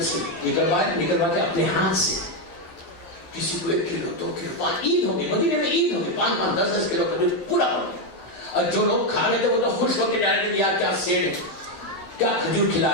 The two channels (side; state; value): right; late; 11 ms